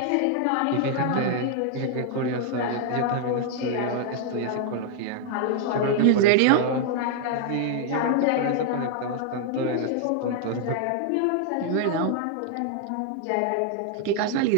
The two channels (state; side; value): different; both; correlation 0.00